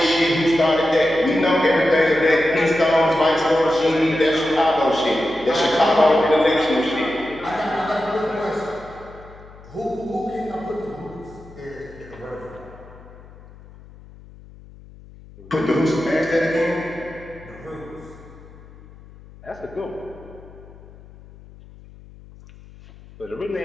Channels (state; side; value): noise; left; hum, 21 dB below the sound